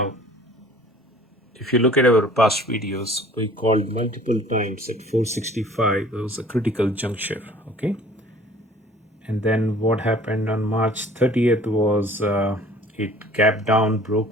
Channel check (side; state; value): both; normal; correlation 0.50